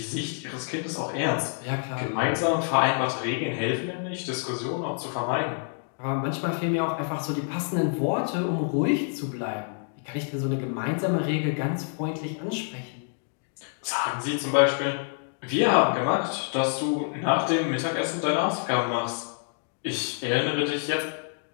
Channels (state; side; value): silent; right; 56 dB below the other